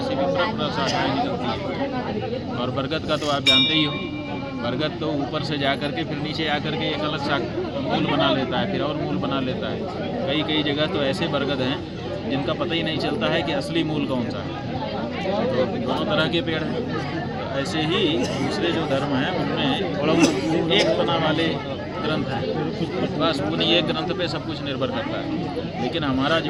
से भी प्रशाखाएं निकलती हैं। और बरगद का तो आप जानते ही हो, बरगद तो ऊपर से जा कर के फिर नीचे आकर के एक अलग मूल बना लेता है, फिर और मूल बना लेता है। कई जगह तो ऐसे बरगद हैं जिनका पता ही नहीं चलता है कि असली मूल कौन सा है। तो दोनों तरह के पेड़ हैं। ऐसे ही दूसरे जो धर्म हैं उनमें एक तना वाले ग्रंथ है, बस उन्हीं एक ग्रंथ पे सब कुछ निर्भर करता है। लेकिन हमारा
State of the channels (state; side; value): identical; both; correlation 1.00